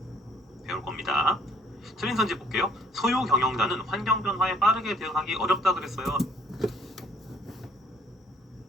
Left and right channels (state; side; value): normal; both; correlation 0.61